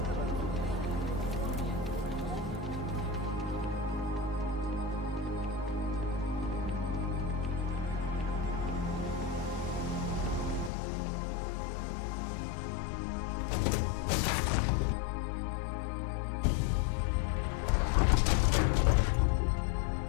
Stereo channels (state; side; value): drops out; right; at 10.7 s